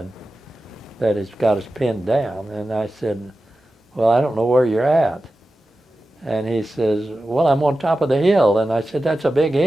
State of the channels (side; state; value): both; normal; correlation 0.93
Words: that has got us pinned down. And I said, well, I don't know where you're at. And he says, well, I'm on top of the hill. And I said, that's a big